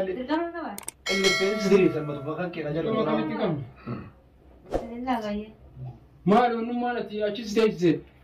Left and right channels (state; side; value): identical; both; correlation 1.00